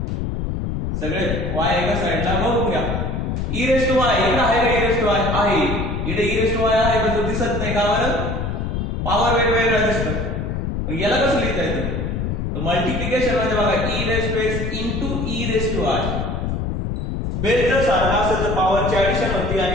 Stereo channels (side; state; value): left; noise; rumble, 2 dB below the sound